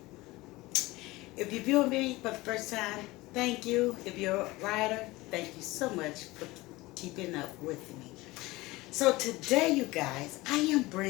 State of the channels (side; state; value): right; quieter; 20.4 dB